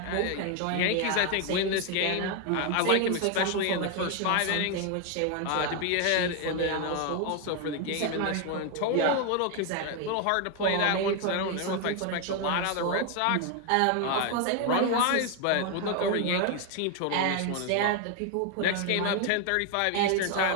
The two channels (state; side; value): different; both; correlation 0.01